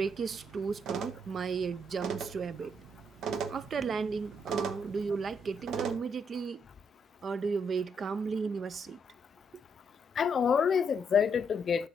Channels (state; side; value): normal; both; correlation 0.75